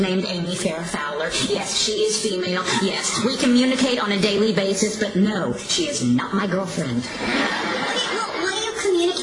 named Amy Farrah Fowler. Yes, she is female. Yes, we communicate on a daily basis, but no, she is not my girlfriend. okay, well, what do you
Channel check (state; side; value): identical; both; correlation 1.00